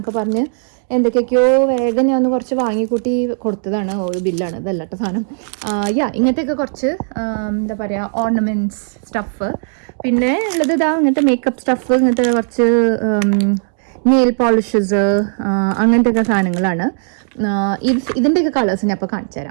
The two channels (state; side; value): silent; left; digital silence